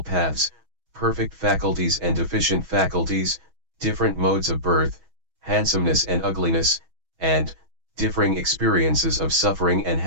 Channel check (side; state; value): left; late; 6.2 ms